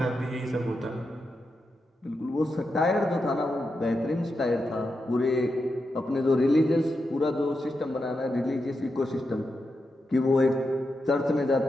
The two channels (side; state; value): both; normal; correlation 0.87